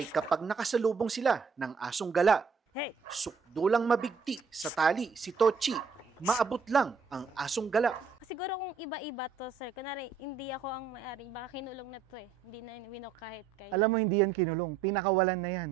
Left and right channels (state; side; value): quieter; left; 5.7 dB